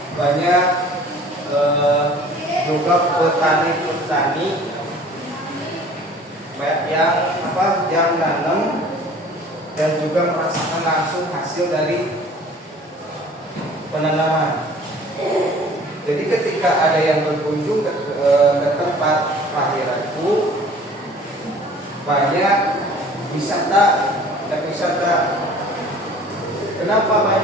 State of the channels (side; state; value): both; normal; correlation 0.49